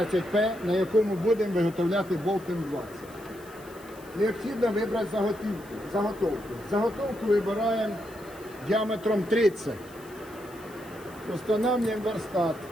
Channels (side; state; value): left; noise; hiss, 23 dB below the sound